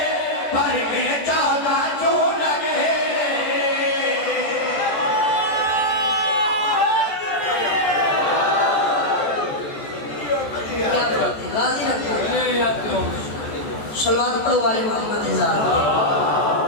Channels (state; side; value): late; right; 14 ms